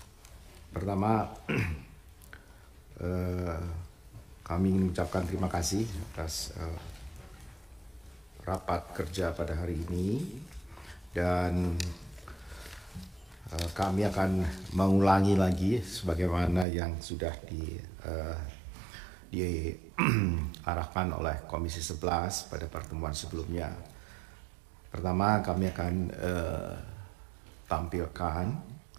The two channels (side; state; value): left; drops out; at 16.7 s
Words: Pertama, kami ingin mengucapkan terima kasih atas rapat kerja pada hari ini, dan kami akan mengulangi lagi sebagaimana yang sudah diarahkan oleh Komisi 11 pada pertemuan sebelumnya. Pertama, kami akan tampilkan